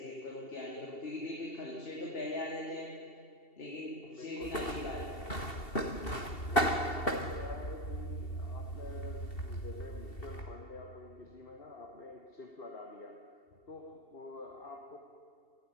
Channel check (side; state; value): right; late; 2.7 ms